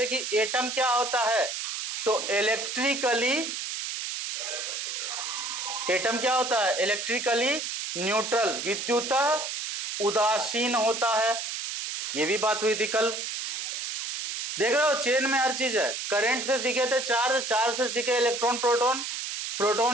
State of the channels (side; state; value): right; noise; hiss, 4 dB below the sound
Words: कि एटम क्या होता है, तो इलेक्ट्रिकली, एटम क्या होता है? इलेक्ट्रिकली न्यूट्रल, विद्युतः उदासीन होता है। ये भी बात हुई थी कल। देख रहे हो, चेन में हर चीज है। करंट से सीखे थे चार्ज, चार्ज से सीखे इलेक्ट्रॉन प्रोटॉन,